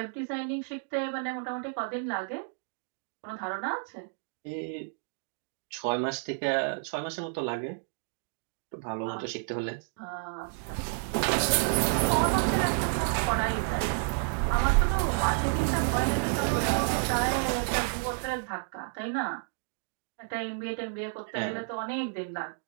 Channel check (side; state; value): left; silent; 57 dB below the other